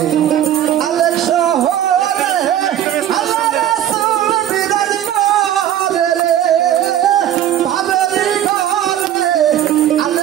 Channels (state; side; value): quieter; left; 11.4 dB